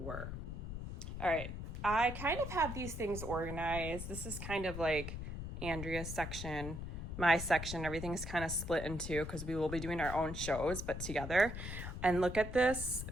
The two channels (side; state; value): left; noise; rumble, 6 dB below the sound